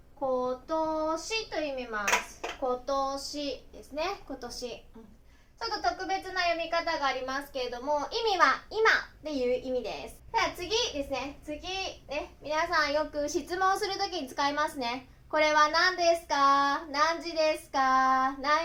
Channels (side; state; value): both; identical; correlation 1.00